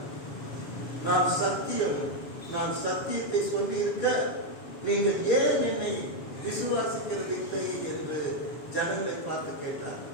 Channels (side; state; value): right; late; 7.1 ms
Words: நான் சத்தியத்தை சொல்லி இருக்க நீங்கள் ஏன் என்னை விசுவாசிக்கிறது இல்லை என்று ஜனங்களை பார்த்து கேட்டார்.